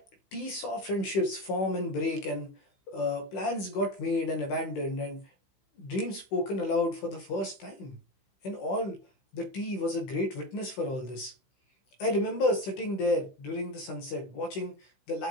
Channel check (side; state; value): right; late; 16 ms